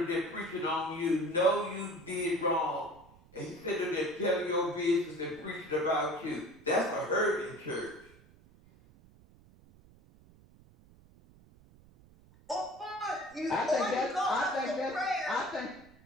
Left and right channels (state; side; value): noise; right; rumble, 25 dB below the sound